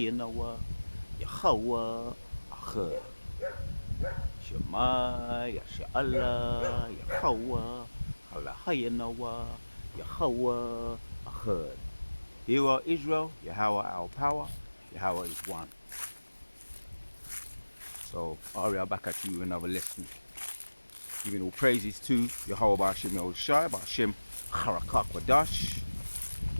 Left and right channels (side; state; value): both; inverted; correlation -1.00